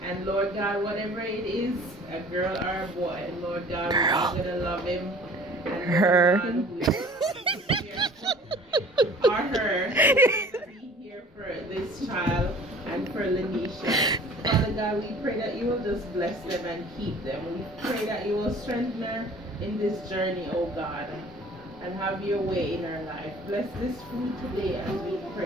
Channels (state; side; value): normal; both; correlation 0.49